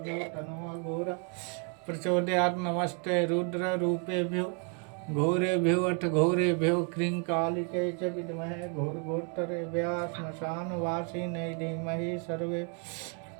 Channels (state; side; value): quieter; left; 37.5 dB